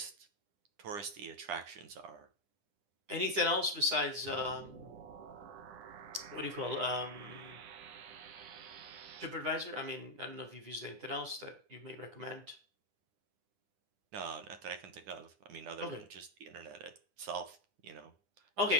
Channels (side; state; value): left; late; 9.9 ms